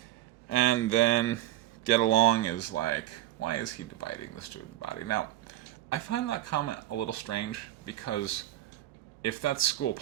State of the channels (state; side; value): quieter; left; 14.5 dB